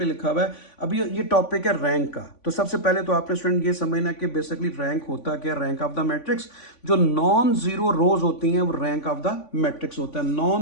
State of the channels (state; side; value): late; right; 3.5 ms